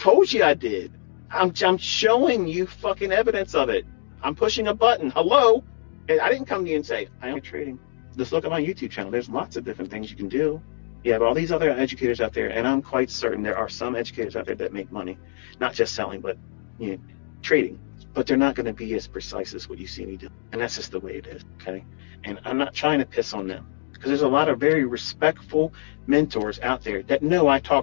you I did. I'm showing you fucking evidence of it. I'm pushing a button. Hello? And I didn't come to you and say, I am trading. Just look at my YouTube channel. There's lots of different things you can do. You have all these other educators out there, and I'm quite certain there are some educators out there that make money, not just selling, but trading. But they're not going to be as precise as what you see me do. And that's just the way it is, okay? And I'm not trying to piss on them, because there's a lot of very respectful mentors out there that know I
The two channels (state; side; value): silent; right; digital silence